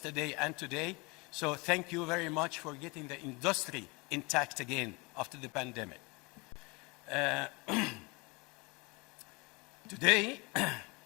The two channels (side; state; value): right; quieter; 27.3 dB